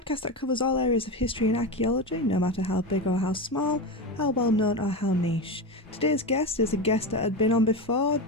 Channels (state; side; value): normal; both; correlation 0.19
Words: that covers all areas of history and archaeology, no matter how big or how small, how well known or how niche. Today's guest is a guest that had been on before,